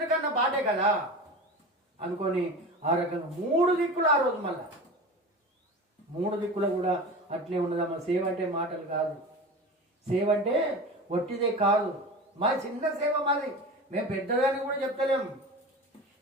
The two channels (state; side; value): normal; both; correlation 0.31